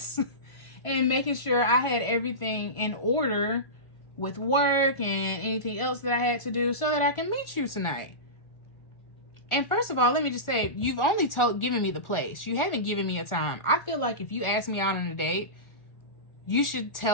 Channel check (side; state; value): right; late; 1.4 ms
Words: and making sure I had everything in order with work and anything else that I had to do so that I can meet you tonight. And first of all, let me just say, you've only given me the place. You haven't given me a time. I feel like if you ask me out on a date, you should